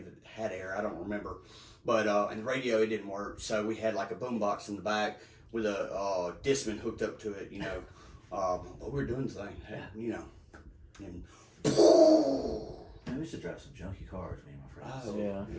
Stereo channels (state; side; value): identical; both; correlation 1.00